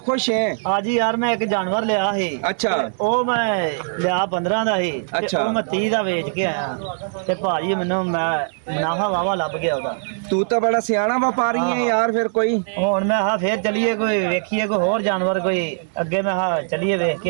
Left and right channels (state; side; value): silent; left; 61 dB below the other